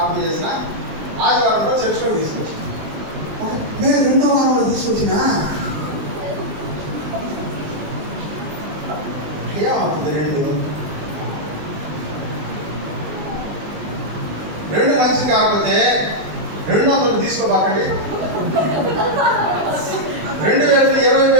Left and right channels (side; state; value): left; late; 19 ms